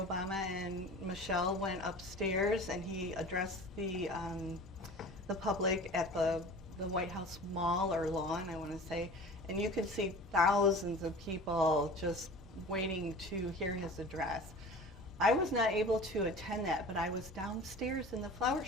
Obama and Michelle went upstairs, and he addressed the public at the White House Mall or lawn, I want to say, and you could see thousands of people just waiting to hear his address. I was not able to attend that, but I was downstairs in the flower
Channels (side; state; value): both; normal; correlation 0.39